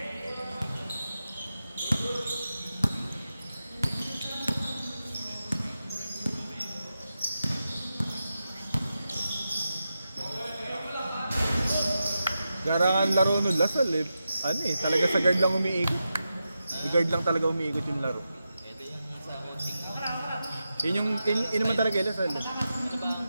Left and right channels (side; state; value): both; inverted; correlation -0.89